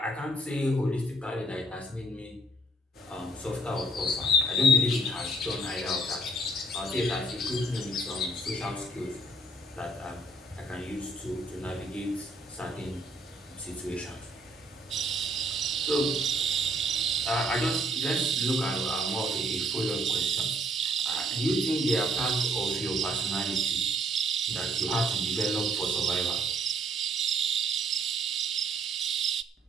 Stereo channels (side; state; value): both; normal; correlation 0.64